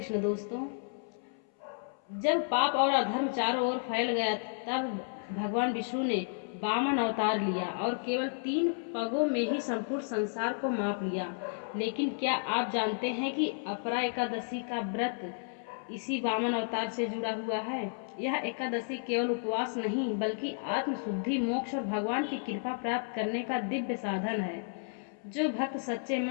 दोस्तों, जब पाप और अधर्म चारों ओर फैल गया तब भगवान विष्णु ने वामन अवतार लिया और केवल 3 पगों में ही संपूर्ण संसार को माप लिया। लेकिन क्या आप जानते हैं कि अपरा एकादशी का व्रत इसी वामन अवतार से जुड़ा हुआ है। यह एकादशी केवल उपवास नहीं बल्कि आत्मशुद्धि, मोक्ष और भगवान की कृपा प्राप्त करने का दिव्य साधन है। जो भक्त सच्चे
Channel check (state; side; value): silent; right; 56 dB below the other